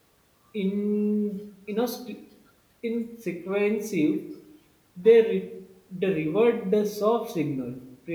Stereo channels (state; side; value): identical; both; correlation 1.00